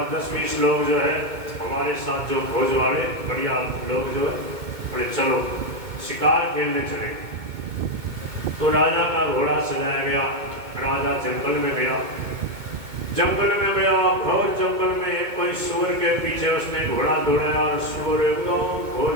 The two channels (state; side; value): late; left; 2.2 ms